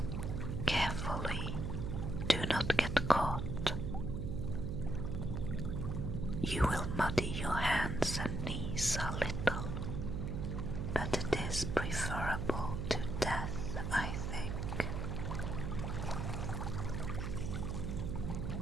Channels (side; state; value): right; noise; hum, 2 dB below the sound